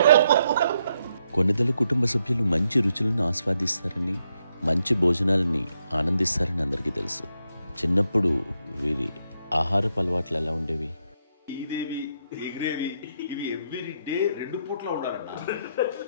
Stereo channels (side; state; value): both; inverted; correlation -0.79